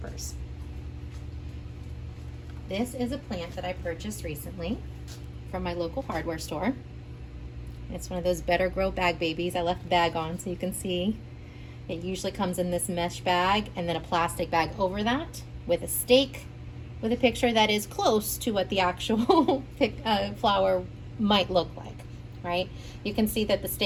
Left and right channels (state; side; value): identical; both; correlation 1.00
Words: This is a plant that I purchased recently from my local hardware store. It's one of those Better Grow bag babies. I left the bag on so you can see. It usually comes in this mesh bag and then a plastic bag over that with a stake with a picture that is close to what the actual flower might look like, right? You can see that the